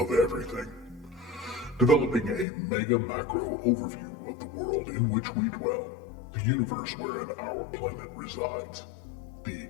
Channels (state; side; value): drops out; right; at 2.5 s